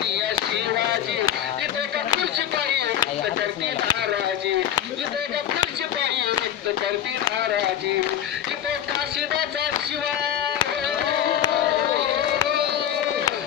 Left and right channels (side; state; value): right; quieter; 10.4 dB